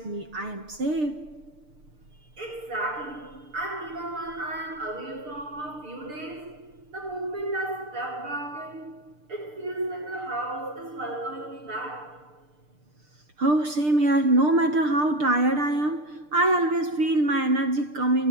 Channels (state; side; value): late; left; 6.7 ms